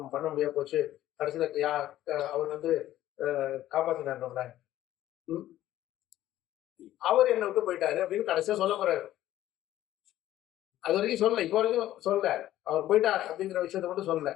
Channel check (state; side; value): quieter; right; 13.7 dB